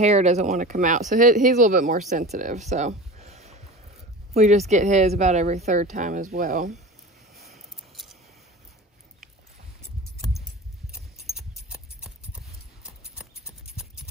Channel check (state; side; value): normal; both; correlation 0.33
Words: doesn't want to come out. So he's a little bit more sensitive. So we just get his about every third time as well.